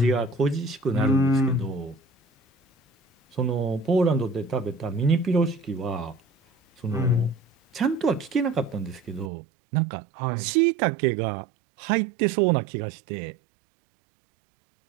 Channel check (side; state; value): left; drops out; at 9.3 s